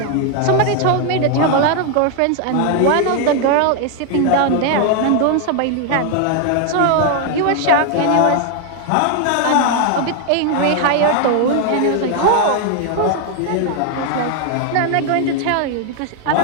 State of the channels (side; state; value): both; different; correlation 0.01